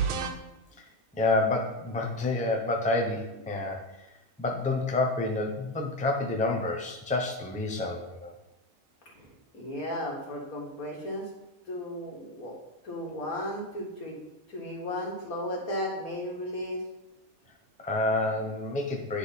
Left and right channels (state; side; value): normal; both; correlation 0.15